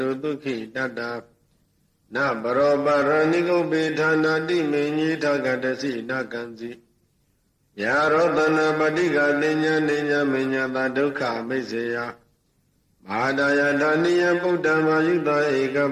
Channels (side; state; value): both; identical; correlation 1.00